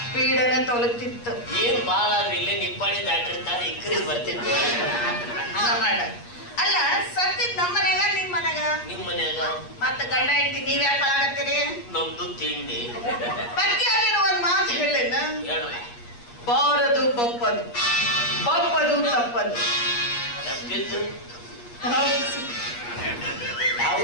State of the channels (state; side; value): late; right; 8.4 ms